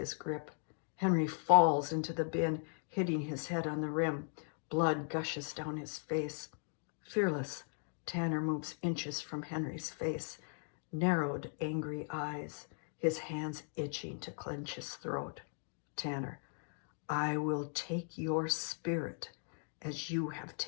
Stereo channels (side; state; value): right; silent; 52 dB below the other